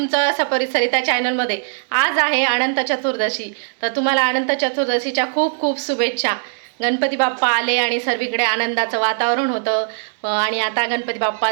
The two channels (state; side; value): silent; left; digital silence